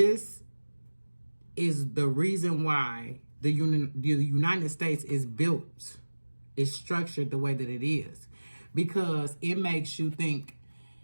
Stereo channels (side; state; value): both; inverted; correlation -1.00